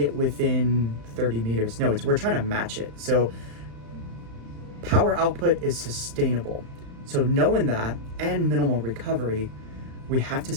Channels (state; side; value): late; left; 35 ms